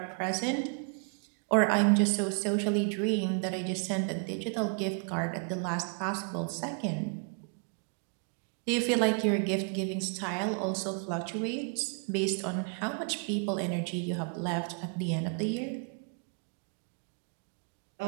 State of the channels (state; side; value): quieter; left; 39.7 dB